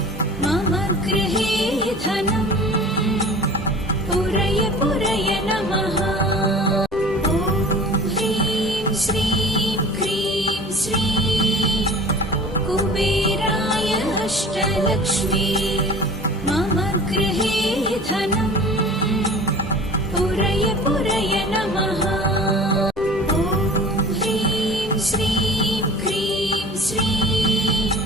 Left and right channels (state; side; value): normal; both; correlation 0.41